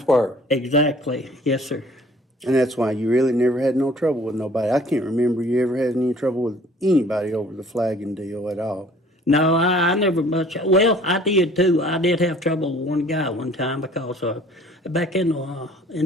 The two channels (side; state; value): both; normal; correlation 0.53